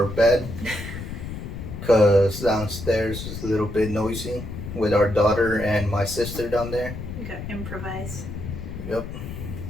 bed because downstairs is a little bit noisy with our daughter and my sister down there. We got improvise. Yep.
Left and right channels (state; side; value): noise; left; rumble, 8 dB below the sound